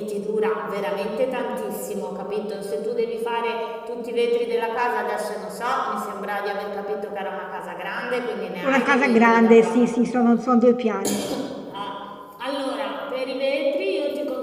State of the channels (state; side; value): identical; both; correlation 1.00